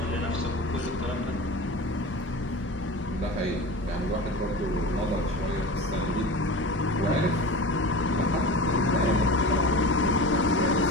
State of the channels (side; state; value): both; normal; correlation 0.32